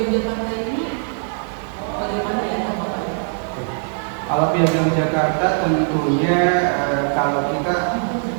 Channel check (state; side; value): silent; left; 58 dB below the other